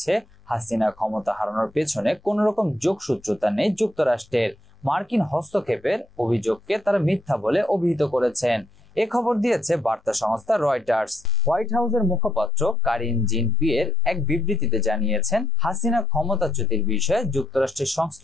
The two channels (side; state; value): both; normal; correlation 0.82